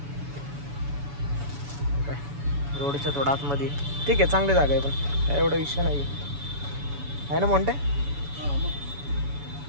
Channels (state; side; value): late; left; 7.0 ms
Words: काय रोडच्या थोडा आतमध्ये ठीक आहे चांगली जागा आहे पण काय एवढा विषय नाही आहे ना मोठे.